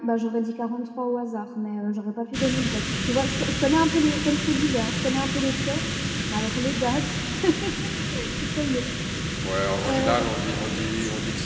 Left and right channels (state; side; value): identical; both; correlation 1.00